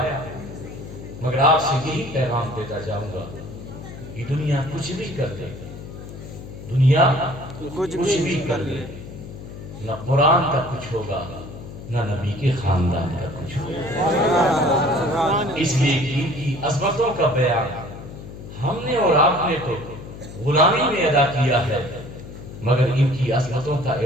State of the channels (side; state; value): left; noise; hum, 13 dB below the sound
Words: مگر آپ سے یہی پیغام دیتا جاؤں گا کہ دنیا کچھ بھی کر دے، دنیا کچھ بھی کر دے، نہ قرآن کا کچھ ہوگا نہ نبی کے خاندان کا کچھ ہوگا۔ اس لیے کہ ان کی عظمتوں کا بیان ہم نے اور آپ نے تو غلامی میں ادا کیا ہے، مگر ان کی عظمتوں کا